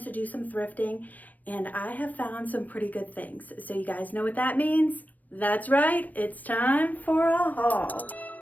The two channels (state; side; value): late; right; 0.081 ms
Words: to do some thrifting, and I have found some pretty good things. So you guys know what that means? That's right, it's time for a haul.